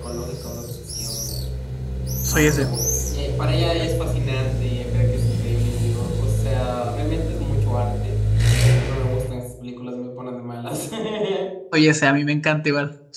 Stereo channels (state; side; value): identical; both; correlation 1.00